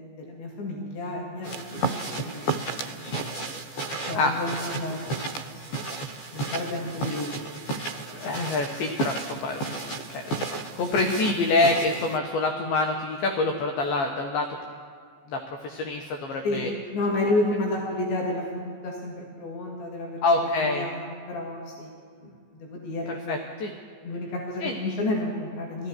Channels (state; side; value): late; right; 14 ms